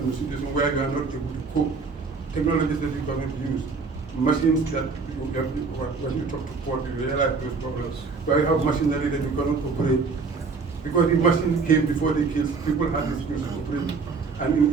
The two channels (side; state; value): left; quieter; 4.6 dB